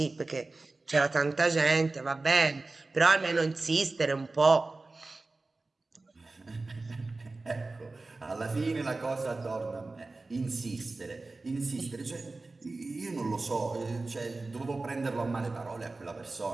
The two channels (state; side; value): quieter; left; 3.4 dB